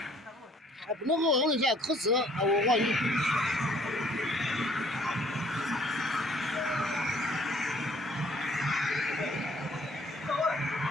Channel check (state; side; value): normal; both; correlation 0.59